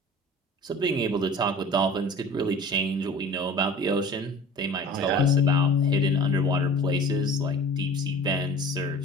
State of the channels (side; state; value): both; normal; correlation 0.42